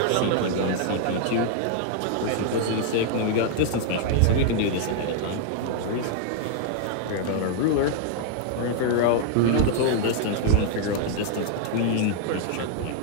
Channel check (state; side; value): different; both; correlation -0.01